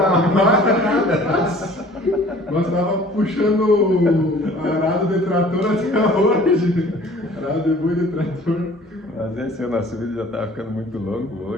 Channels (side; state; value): both; normal; correlation 0.50